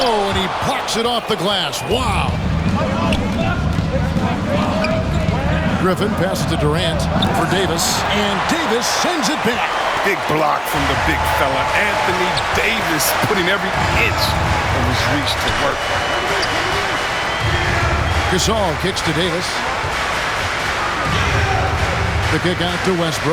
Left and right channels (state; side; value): identical; both; correlation 1.00